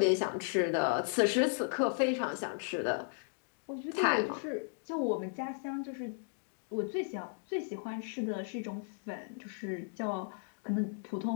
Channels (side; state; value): right; silent; 54 dB below the other